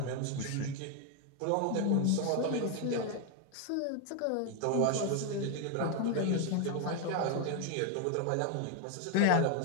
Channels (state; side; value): different; both; correlation 0.01